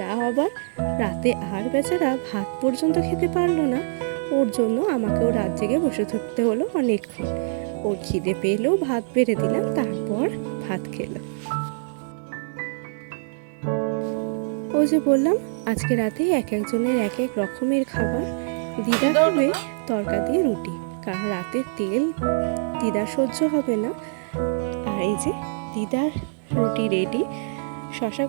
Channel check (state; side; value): silent; left; digital silence